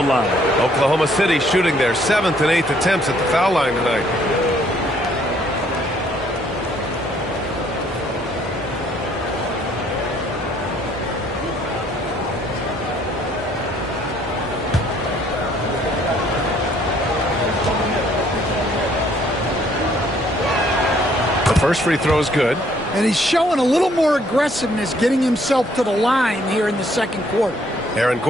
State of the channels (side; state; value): both; normal; correlation 0.64